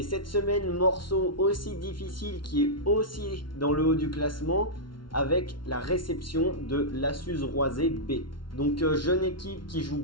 cette semaine, morceau aussi difficile qui est aussi dans le haut du classement, avec la réception de l'Assus Roisé B. Donc jeune équipe qui joue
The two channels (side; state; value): right; late; 0.73 ms